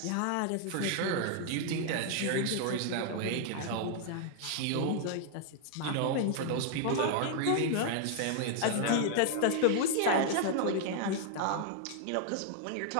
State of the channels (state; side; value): different; both; correlation 0.00